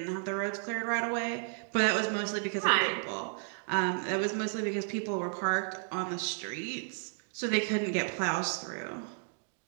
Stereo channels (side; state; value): left; silent; 56 dB below the other